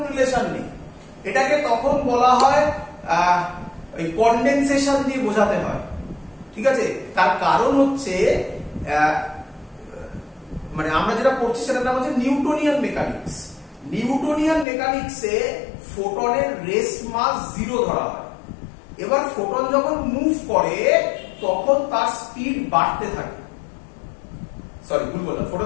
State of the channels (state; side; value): drops out; right; at 14.7 s